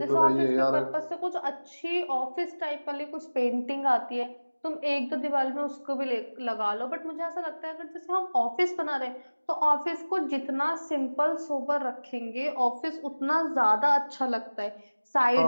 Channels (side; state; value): both; inverted; correlation -1.00